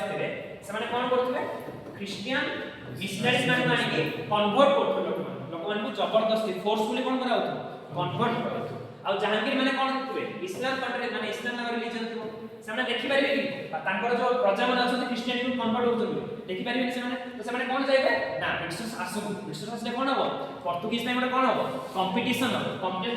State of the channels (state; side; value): identical; both; correlation 1.00